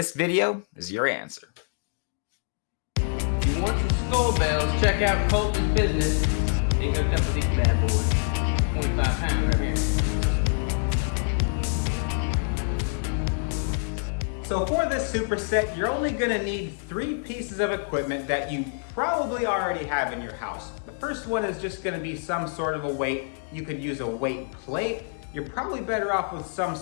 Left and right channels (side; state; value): right; silent; digital silence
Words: video is your answer. If you want some skull bells, check out Colton's Business. They hooked up with these bad boys. 25 pounds right here. So for this superset, you're only gonna need 3 pieces of equipment that you probably already have in your house. The first one is just gonna be some sort of a weight. You could use a weight plate. You're probably better off with some